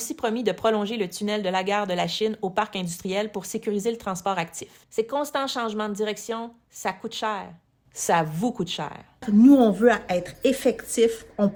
promis de prolonger le tunnel de la gare de la Chine au parc industriel pour sécuriser le transport actif. Ces constants changements de direction, ça coûte cher. Ça vous coûte cher. Nous, on veut être effectifs. On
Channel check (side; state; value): both; identical; correlation 1.00